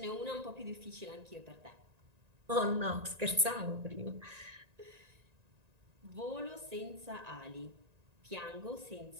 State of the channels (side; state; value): left; late; 1.9 ms